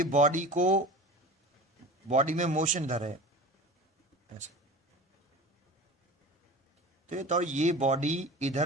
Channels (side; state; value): both; normal; correlation 0.35